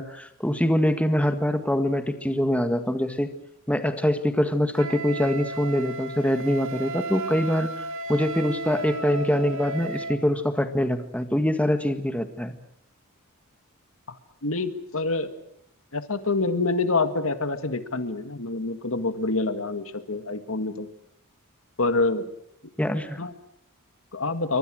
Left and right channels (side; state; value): both; normal; correlation 0.60